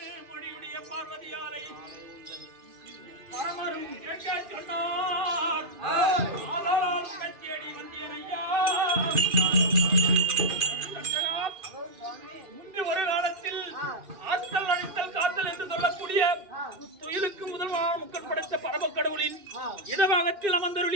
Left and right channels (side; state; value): left; late; 2.5 ms